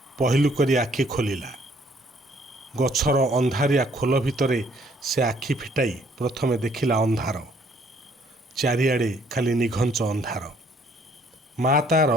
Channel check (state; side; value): normal; both; correlation 0.63